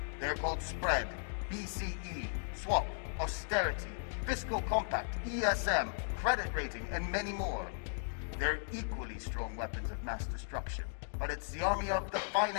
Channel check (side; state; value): right; silent; digital silence